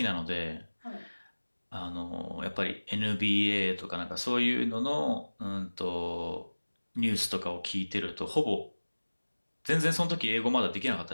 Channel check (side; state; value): both; inverted; correlation -1.00